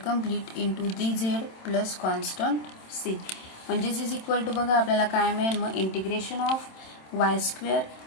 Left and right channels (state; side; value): late; right; 27 ms